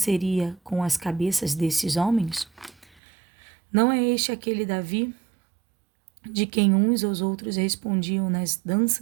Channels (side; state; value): left; drops out; at 2.9 s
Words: com as cabeças desses homens? Não é este aquele Davi, de quem uns aos outros respondiam nas